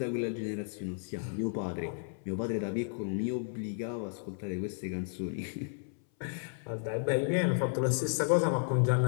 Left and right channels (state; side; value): silent; right; 56 dB below the other